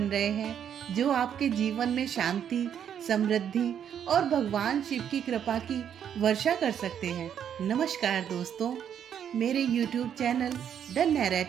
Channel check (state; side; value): quieter; left; 8.9 dB